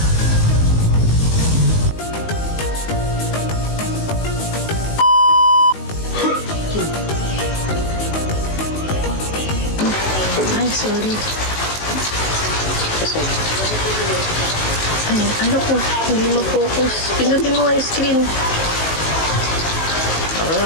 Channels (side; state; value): right; late; 19 ms